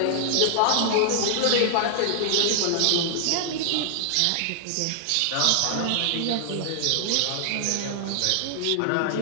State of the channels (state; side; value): different; both; correlation 0.00